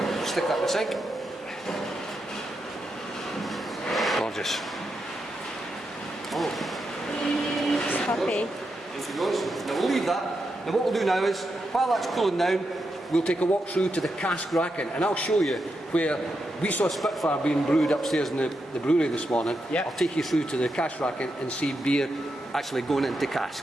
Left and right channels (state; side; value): normal; both; correlation 0.85